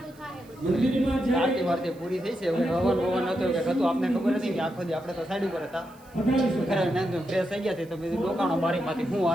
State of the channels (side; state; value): right; noise; hiss, 28 dB below the sound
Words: થાય બધું. મંદિરમાં આરતી જાય વારતી પૂરી થઈ છે હવે હવન ભવન હતો કે હતું આપને ખબર નથી કે આખો દી આપણે તો સાઈડ ઉપર હતા પધારી શકો. ઘરે નાઈન તો ફ્રેશ થઈ ગયા છે તો બીજું ડોકાણો બારીમાંથી શું